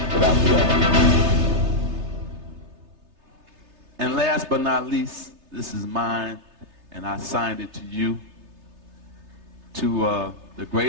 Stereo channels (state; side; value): late; left; 3.3 ms